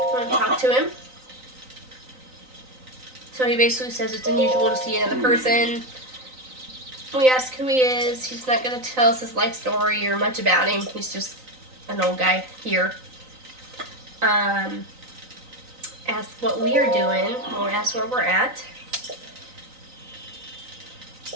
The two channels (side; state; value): left; late; 3.9 ms